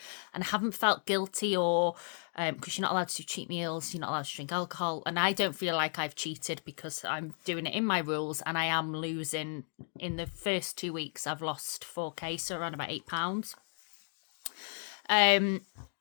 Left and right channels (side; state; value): right; silent; 55 dB below the other